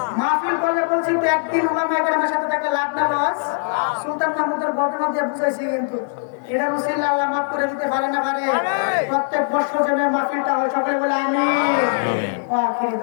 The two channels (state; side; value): silent; right; 65 dB below the other